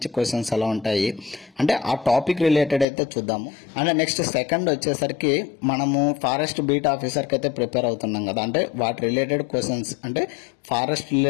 క్వశ్చన్స్ ఎలా ఉంటాయి అంటే ఆ టాపిక్ రిలేటెడ్ అయితే చూద్దాము. అండ్ నెక్స్ట్ సెకండ్ వచ్చేసరికి మనము ఫారెస్ట్ బీట్ ఆఫీసర్కి అయితే ప్రిపేర్ అవుతున్నాం కదా, అంటే వాటి రిలేటెడ్ క్వశ్చన్స్ అంటే ఫారెస్ట్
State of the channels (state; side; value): drops out; right; at 2.9 s